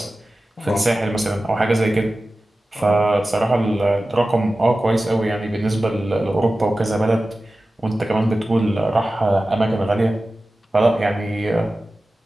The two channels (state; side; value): normal; both; correlation 0.95